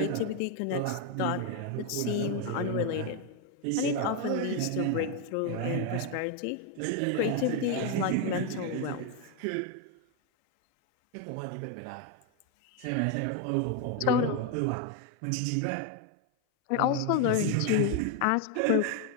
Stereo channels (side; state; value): both; different; correlation 0.01